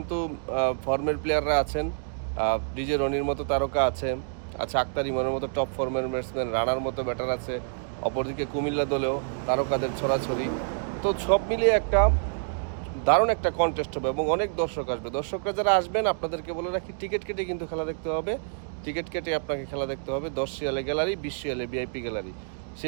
ফর্মের প্লেয়াররা আছেন, ডিজে রনির মতো তারকা আছে, আক্তার ইমনের মতো টপ ফর্মের ব্যাটসম্যান, রানার মতো ব্যাটার আছে। অপরদিকে কুমিল্লা দলেও তারকাদের ছড়াছড়ি। তো সব মিলিয়ে একটা দারুণ একটা কন্টেস্ট হবে এবং অনেক দর্শক আসবে। দর্শকরা যারা আসবেন আপনাদেরকে বলে রাখি, টিকিট কেটে কিন্তু খেলা দেখতে হবে। টিকিট কেটে আপনাকে খেলা দেখতে হবে। 10 রিয়ালে গ্যালারি, 20 রিয়ালে ভিআইপি গ্যালারি,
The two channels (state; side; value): silent; left; digital silence